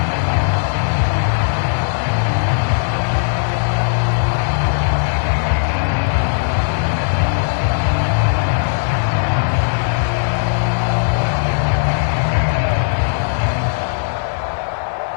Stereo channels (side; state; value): right; silent; digital silence